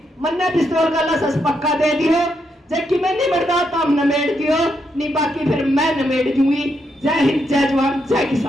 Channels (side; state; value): both; normal; correlation 0.80